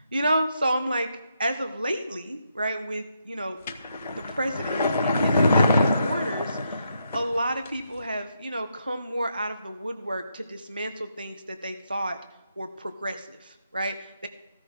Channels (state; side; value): inverted; both; correlation -0.79